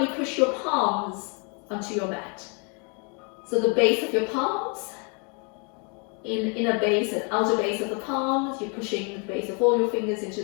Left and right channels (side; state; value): right; quieter; 35.9 dB